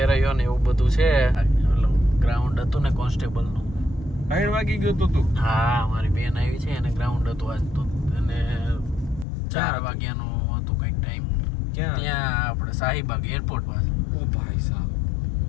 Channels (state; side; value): drops out; right; at 9.2 s